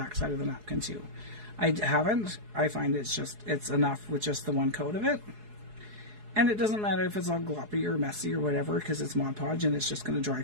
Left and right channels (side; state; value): left; late; 4.7 ms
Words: side of the napkin too. I haven't. I find it's enough with just the one coat of it. And it doesn't matter if it's all gloppy or messy or whatever, because it's Mod Podge and it's just going to dry